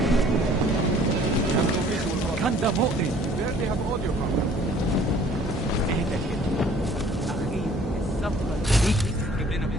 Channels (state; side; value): normal; both; correlation 0.55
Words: كان ده مؤذي. Barely have audio from them. اهدى كده. أخي الصفقة دي تجيب لنا